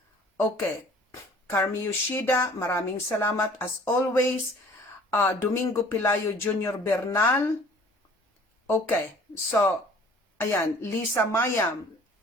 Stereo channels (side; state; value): both; normal; correlation 0.51